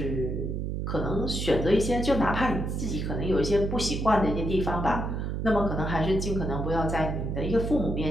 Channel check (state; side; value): noise; right; hum, 2 dB below the sound